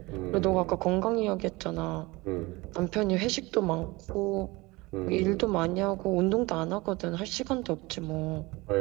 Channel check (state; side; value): quieter; left; 22.7 dB